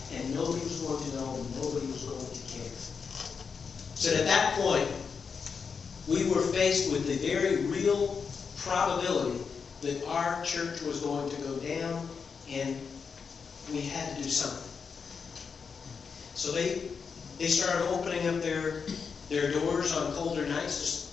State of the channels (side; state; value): right; quieter; 5.8 dB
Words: and nobody was going to know and nobody was going to care. So at that point, we were faced with the very real probability that our church was going to go down, and we had to do something. So they started opening up their doors on colder nights, just